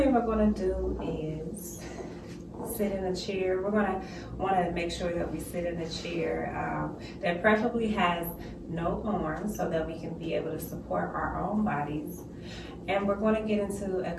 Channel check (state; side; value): identical; both; correlation 1.00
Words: we're going to do is sit in a chair. We're going to want to make sure that we sit in a chair that preferably has no arms so that we can be able to support our own bodies. And we're going to get into a